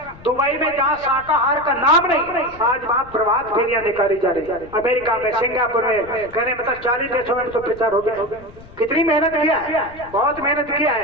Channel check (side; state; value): left; noise; rumble, 21 dB below the sound